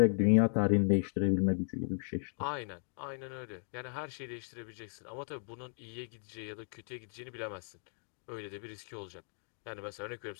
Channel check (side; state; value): right; silent; digital silence